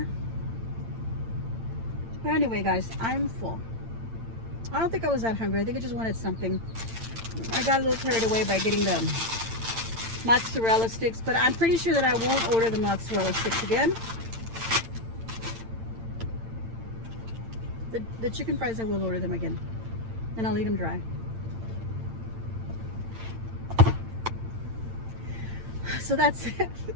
But anyway, guys, I'm full. I don't think I was that hungry. I think I just wanted something. I got a little carried away by getting the mozzarella sticks, but I'm pretty sure that I won't order the mozzarella sticks again. The chicken fries, I will order them again, and I'll eat them dry. So that's it.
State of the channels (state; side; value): late; left; 8.9 ms